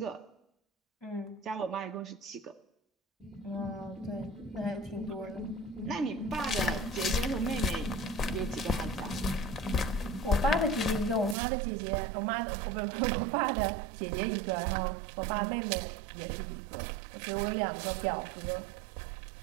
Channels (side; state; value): left; drops out; at 11.4 s